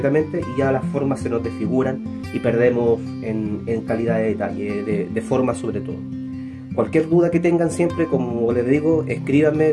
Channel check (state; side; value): identical; both; correlation 1.00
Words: y ya las formas se nos desfiguran y perdemos en calidad de detalle, de forma sobre todo. Cualquier duda que tengan siempre, como les digo,